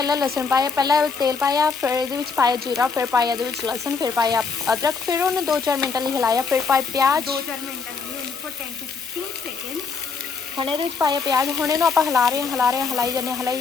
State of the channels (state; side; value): quieter; right; 5.1 dB